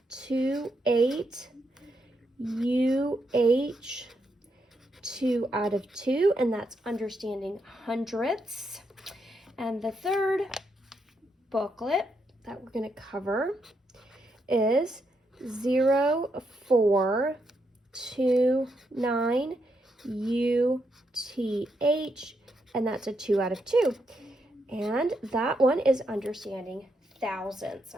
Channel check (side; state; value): both; normal; correlation 0.80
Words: UH 2 out of 2, and that's understanding hundredths. And the third booklet that we're going to cover is 0.429 UTH, and that's a 2 out of 2. And that one is understanding thousands.